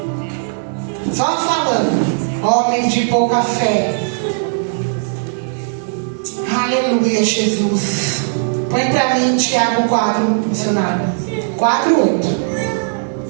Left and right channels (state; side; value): silent; left; digital silence